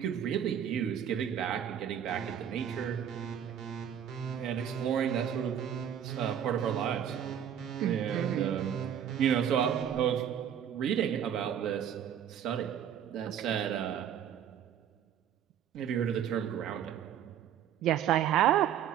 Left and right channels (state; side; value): quieter; left; 9.4 dB